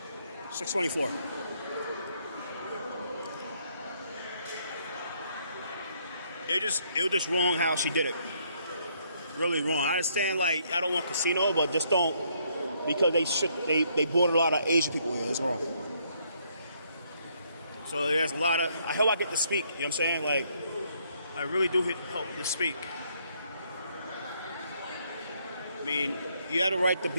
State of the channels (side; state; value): both; inverted; correlation -0.70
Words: $624. It was just wrong how she did it. Really wrong. I understand, like, I don't want casino, but just don't, because they brought a lot of Asian people here. It's wrong. So there's a lot of. I hope I get to speak. You know what I'm saying? Like, I really do hope to speak. I mean, you have the right to